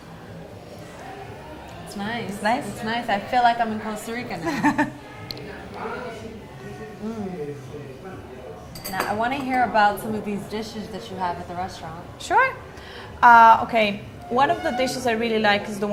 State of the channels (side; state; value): both; identical; correlation 1.00